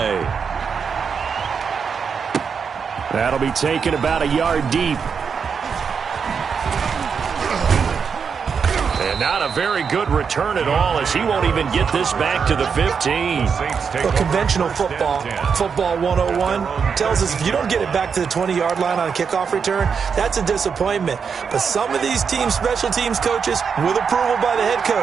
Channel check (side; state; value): left; quieter; 6.2 dB